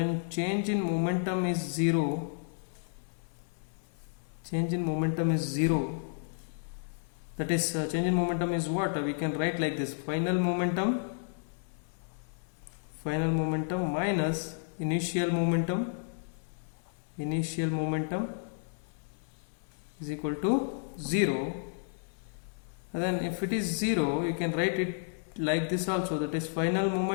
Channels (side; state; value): right; silent; 57 dB below the other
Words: change in momentum is 0, change in momentum is 0. That is, change in momentum is what? We can write like this: final momentum minus initial momentum is equal to 0. And then if it is 0, you can write it like this also, that is final